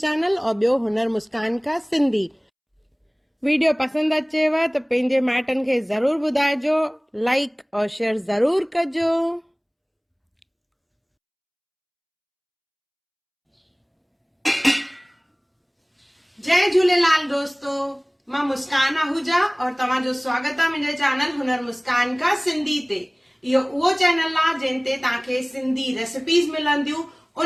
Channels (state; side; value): identical; both; correlation 1.00